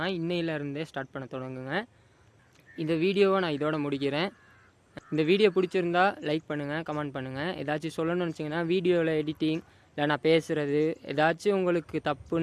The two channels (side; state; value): both; identical; correlation 1.00